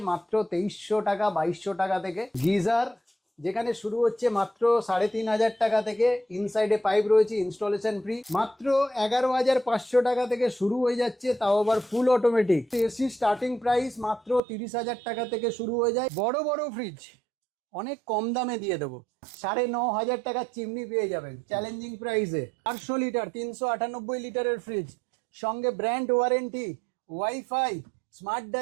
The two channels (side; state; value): left; drops out; at 14.4 s